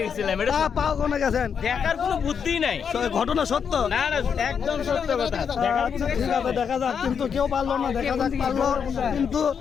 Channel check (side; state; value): right; quieter; 7.0 dB